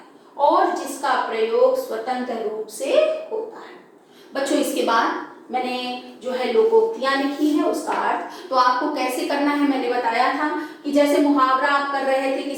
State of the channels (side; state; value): both; identical; correlation 1.00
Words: और जिसका प्रयोग स्वतंत्र रूप से होता है। बच्चों, इसके बाद मैंने जो है लोकोक्तियां लिखी है उसका अर्थ तो आपको कैसे करना है मैंने बताया था कि कि जैसे मुहावरा आप कर रहे थे कि